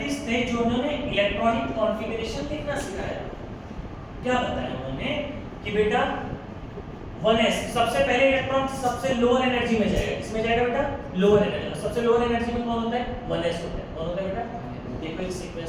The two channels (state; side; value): identical; both; correlation 1.00